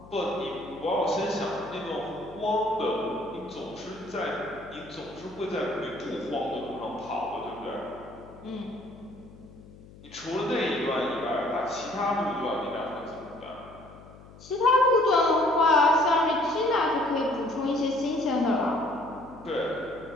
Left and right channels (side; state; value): left; noise; hum, 20 dB below the sound